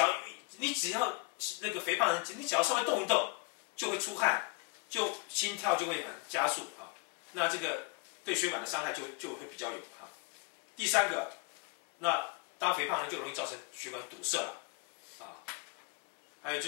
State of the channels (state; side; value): quieter; right; 28.6 dB